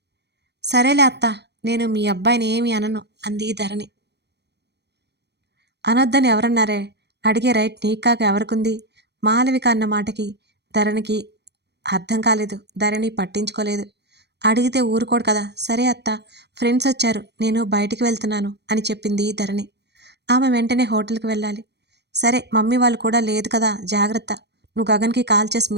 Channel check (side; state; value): left; late; 0.49 ms